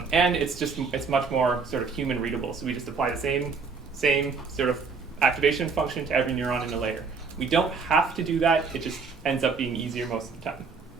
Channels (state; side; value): quieter; left; 4.9 dB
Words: And it's much more sort of human readable. So we just apply the same sort of activation function to every neuron in a layer. We don't have to do that. It just ends up being easier most of the time.